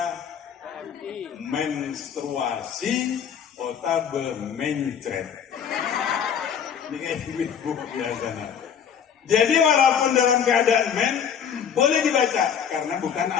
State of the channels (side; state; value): right; quieter; 7.8 dB